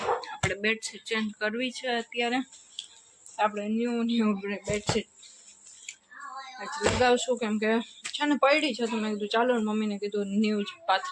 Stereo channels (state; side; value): identical; both; correlation 1.00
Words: આપણે બેડશીટ ચેન્જ કરવી છે અત્યારે। આપણે ન્યૂ બેડશીટ લગાવશું, કેમ કે છે ને પડી છે, તો મેં કીધું ચાલો મમ્મીને કીધું ન્યૂ જ